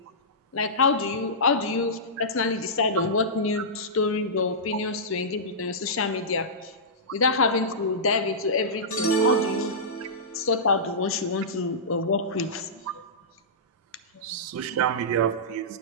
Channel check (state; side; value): normal; both; correlation -0.17